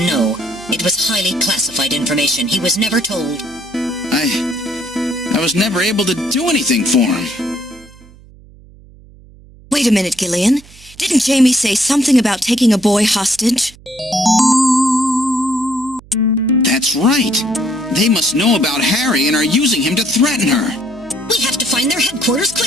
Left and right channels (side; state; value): right; noise; hum, 23 dB below the sound